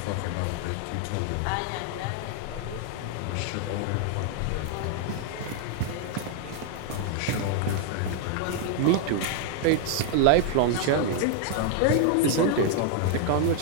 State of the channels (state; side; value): different; both; correlation 0.00